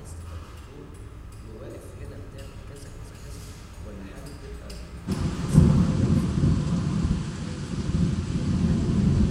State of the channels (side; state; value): both; identical; correlation 1.00